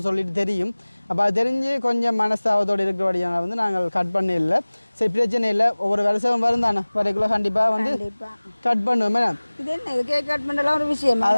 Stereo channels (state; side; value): inverted; both; correlation -1.00